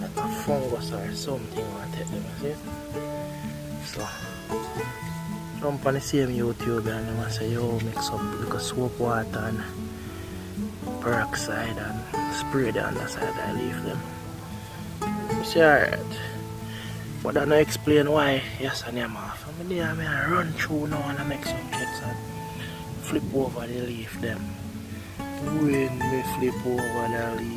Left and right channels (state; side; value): identical; both; correlation 1.00